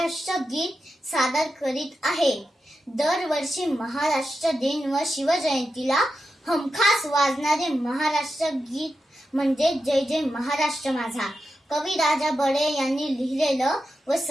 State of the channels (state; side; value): normal; both; correlation 0.89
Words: गीत सादर करीत आहे। दरवर्षी महाराष्ट्र दिन व शिवजयंतीला हमखास वाजणारे महाराष्ट्र गीत म्हणजे जय जय महाराष्ट्र माझा। कवी राजा बडे यांनी लिहिलेलं व